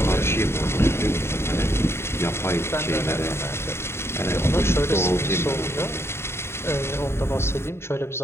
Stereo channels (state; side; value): late; right; 0.12 ms